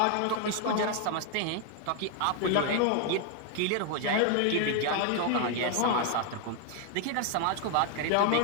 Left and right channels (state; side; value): different; both; correlation 0.01